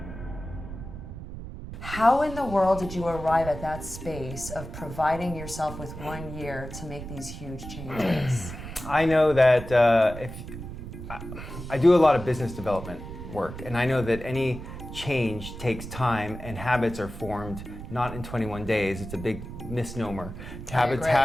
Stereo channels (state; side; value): noise; right; rumble, 10 dB below the sound